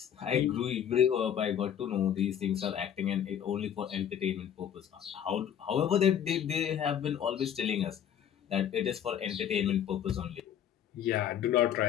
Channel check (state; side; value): quieter; right; 9.4 dB